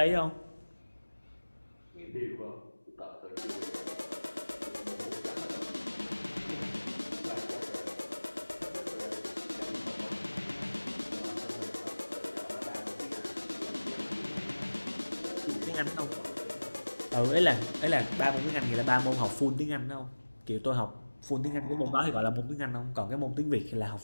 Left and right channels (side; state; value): both; inverted; correlation -1.00